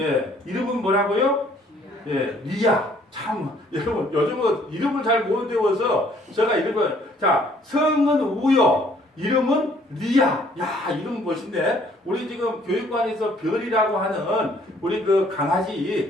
이름은 뭐라고요? 리야. 참, 여러분, 요즘은 이름을 잘 못 외워서 제가 성은 우요. 이름은 리야. 야, 이름 멋있네. 우리 지금 교육관에서 별이라고 하는 우리 그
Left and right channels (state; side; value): normal; both; correlation 0.61